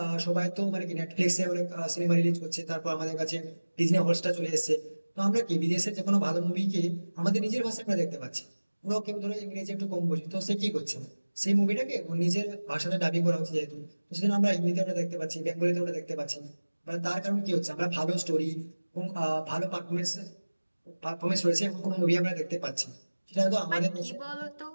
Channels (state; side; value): inverted; both; correlation -1.00